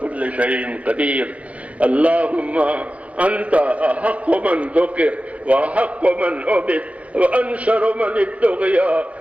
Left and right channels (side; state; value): left; late; 0.065 ms